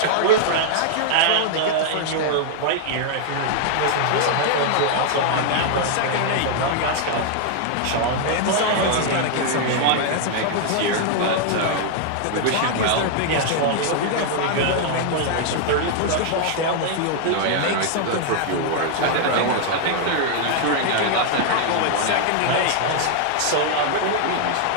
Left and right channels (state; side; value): different; both; correlation 0.00